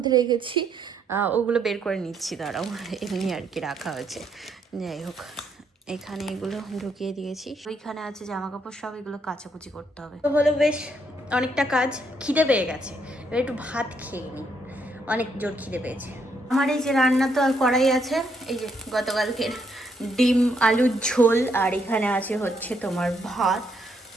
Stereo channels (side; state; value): both; normal; correlation 0.74